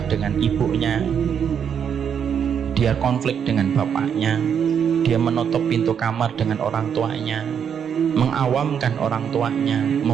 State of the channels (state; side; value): quieter; left; 7.8 dB